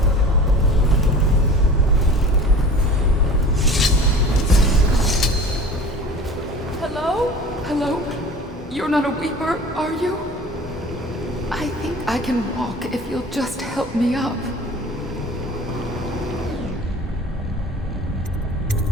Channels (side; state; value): both; normal; correlation 0.41